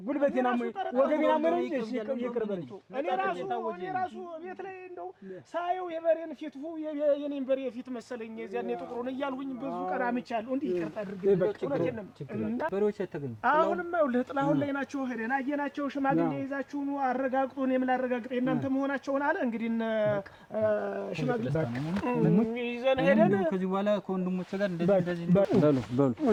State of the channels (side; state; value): both; identical; correlation 1.00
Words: ጉልበቴን አሞኝ ወገቤን አሞኝ ነው እንጂ ይቅር በለኝ። እኔ ራሱ ቤት ላይ እንደው ሳየው የበሬን ፊት የኔን በሬ ፊት መሰለኝ የዚያን የጥቁሩን እያልሁኝ ብዙ ቀን አምቻለሁ። እንዴ ይቅርታ አድርገኝ በሬዎች ተገኙ። አሁንማ ይኸውልህ ጥላሁን ላይ ናቸው። ሄደን አየናቸው። ሽማግሌ ይዛችሁ ነው አረጋግጡ። እኔም ላረጋግጥ እናንተ መሆናቸውን አለ። እንግዲህ ሽማግሌ ይዘን ሄደን ከዚህ በኋላ ወንድሞቼ ጋር እንደዚህ በሉ